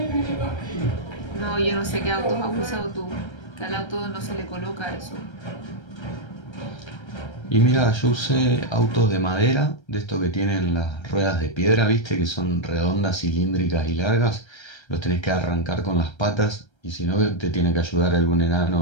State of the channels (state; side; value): late; right; 1.3 ms